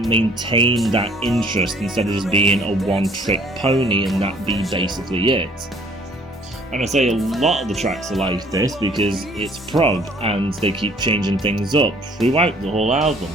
maintain that interest instead of just being a one-trick pony and that be basically it. And I say a lot of the tracks are like this because it's prog and they keep changing things up throughout the whole album.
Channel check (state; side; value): normal; both; correlation 0.57